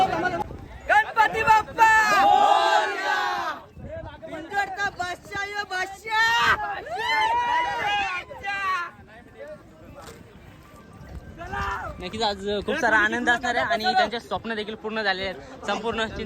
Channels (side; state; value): both; identical; correlation 1.00